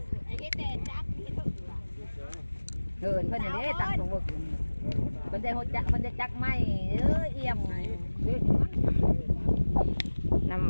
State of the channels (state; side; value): inverted; both; correlation -1.00